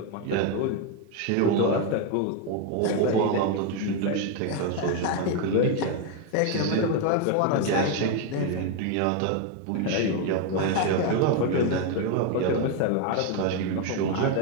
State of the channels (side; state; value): both; different; correlation 0.01